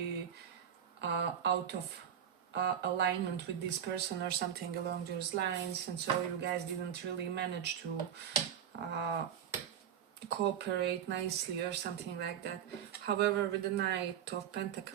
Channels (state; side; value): quieter; left; 9.1 dB